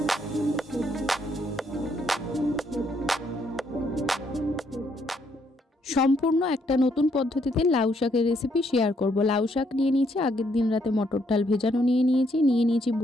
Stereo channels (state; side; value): normal; both; correlation 0.72